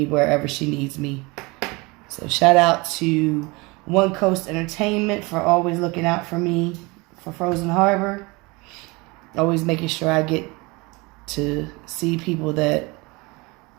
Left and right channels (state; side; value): quieter; left; 25.5 dB